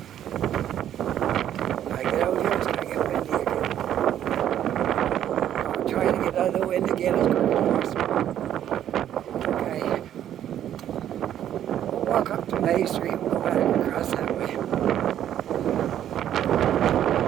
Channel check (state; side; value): quieter; left; 10.8 dB